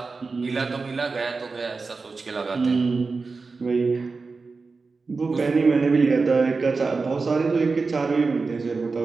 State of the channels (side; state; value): left; quieter; 4.2 dB